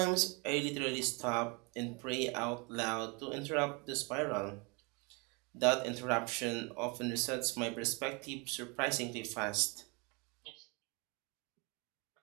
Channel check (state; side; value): quieter; left; 30.0 dB